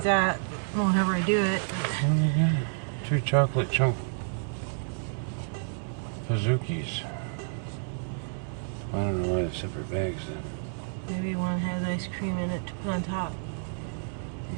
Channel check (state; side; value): silent; left; digital silence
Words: at whenever I do it. But 2 chocolate chunk Pazookies. I don't know why the separate bags then. Maybe one has ice cream in it to put on top.